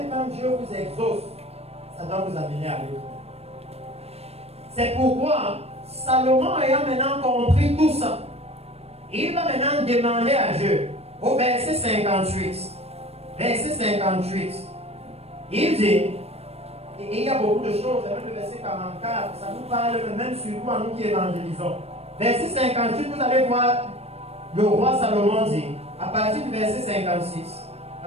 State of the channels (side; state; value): left; late; 0.30 ms